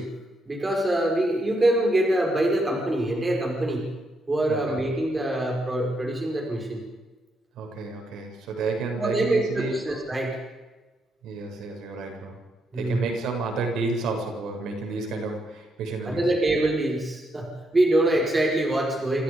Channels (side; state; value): both; normal; correlation 0.79